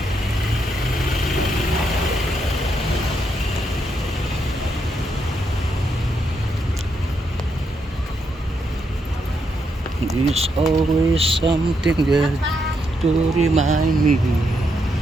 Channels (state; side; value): normal; both; correlation 0.80